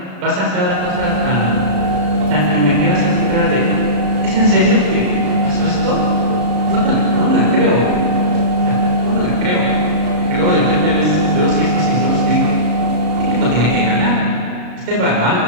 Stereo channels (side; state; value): left; late; 33 ms